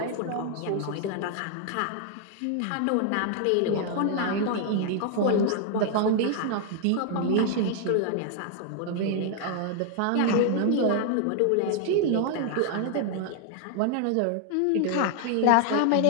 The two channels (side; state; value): both; different; correlation 0.00